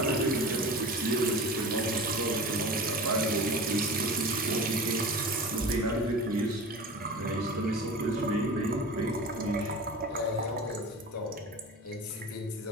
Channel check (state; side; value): normal; both; correlation 0.34